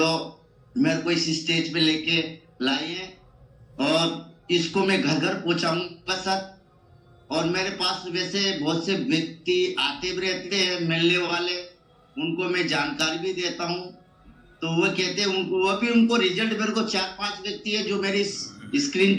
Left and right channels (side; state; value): both; identical; correlation 1.00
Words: मेरे को इस स्टेज पे लेके लाए हैं, और इसको मैं घर घर पहुंचाऊंगा सर। और मेरे पास वैसे बहुत से व्यक्ति आते भी रहते हैं मिलने वाले, उनको मैं जानकारी भी देता हूँ। तो वो कहते हैं उनको रिजल्ट, मेरे को 4-5 व्यक्ति है जो मेरी स्क्रीन